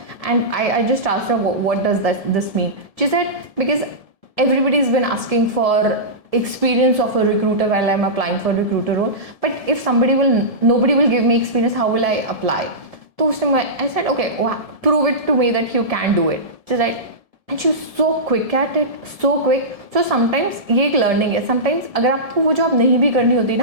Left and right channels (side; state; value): left; late; 1.7 ms